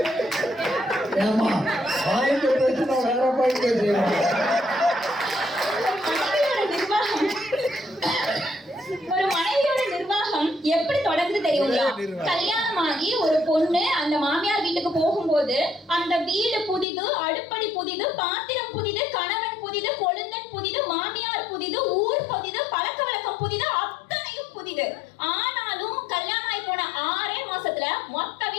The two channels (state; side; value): drops out; right; at 16.9 s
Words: ஒரு மனைவியோட நிர்வாகம் எப்படி தொடர்ந்து தெரியுங்களா? கல்யாணமாகி ஒரு பொண்ணு அந்த மாமியார் வீட்டுக்கு போகும்போது அந்த வீடு புதிது, அடுப்படி புதிது, பாத்திரம் புதிது, கணவன் புதிது, கொழுந்தன் புதிது, மாமியார் புதிது, ஊர் புதிது, பழக்க வழக்கம் புதிது, அத்தனையும் புதிது. ஆனாலும் கல்யாணம் ஆகி போன 6 மாசத்துல மொத்த